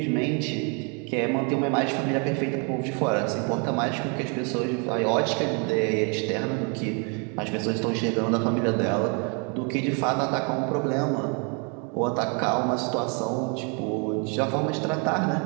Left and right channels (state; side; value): quieter; left; 36.0 dB